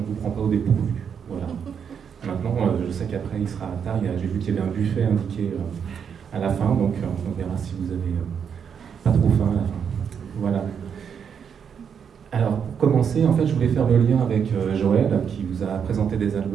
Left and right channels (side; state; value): left; quieter; 7.3 dB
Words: vous prend pas au dépourvu. Voilà. Maintenant, je sais qu'après il sera tard, j'ai vu qu'il y avait un buffet indiqué à la fin, donc on verra si vous avez pas trop faim à la fin. Voilà. Alors, pour commencer, en fait, je voulais faire le lien avec Joël, qui vous a présenté des